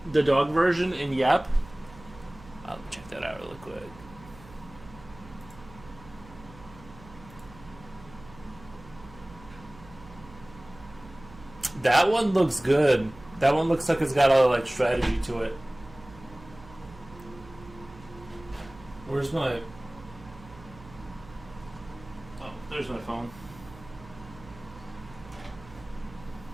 the dog version in Yep. I'll check that out really quick. That one looks good. That one looks like it's got a like strategy to it. Where's my... Oh, there's my phone.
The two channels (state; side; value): noise; right; hum, 20 dB below the sound